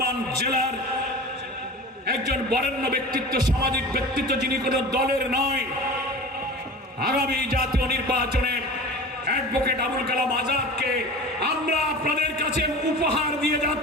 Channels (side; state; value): both; normal; correlation 0.36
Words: জেলার একজন বরেণ্য ব্যক্তিত্ব, সামাজিক ব্যক্তিত্ব, যিনি কোনো দলের নয়, আগামী জাতীয় নির্বাচনে অ্যাডভোকেট আবুল কালাম আজাদকে আমরা আপনাদের কাছে উপহার দিয়ে